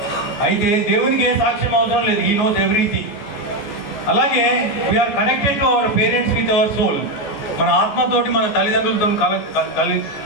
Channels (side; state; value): right; late; 14 ms